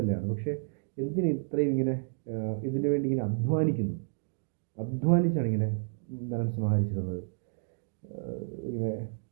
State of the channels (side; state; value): left; silent; digital silence